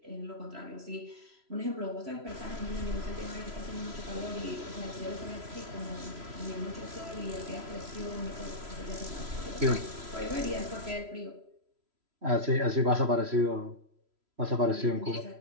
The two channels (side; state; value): left; late; 3.0 ms